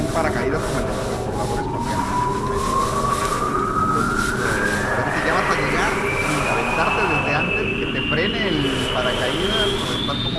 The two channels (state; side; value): identical; both; correlation 1.00